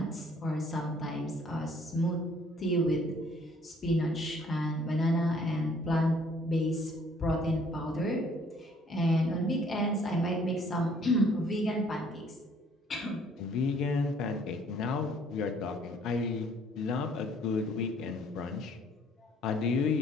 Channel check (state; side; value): normal; both; correlation 0.60